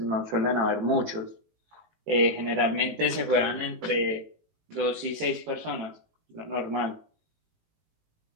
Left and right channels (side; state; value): left; late; 18 ms